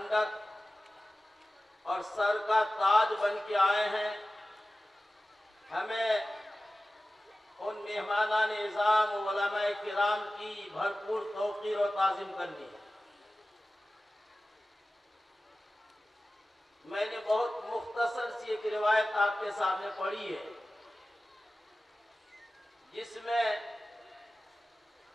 اور سر کا تاج بن کے آئے ہیں، ہمیں ان مہمانان اعظام علماء کرام کی بھرپور توقیر و تعظیم کرنی ہے۔ میں نے بہت مختصر سی ایک روایت آپ کے سامنے پڑھی ہے، جس میں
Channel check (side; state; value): both; normal; correlation 0.96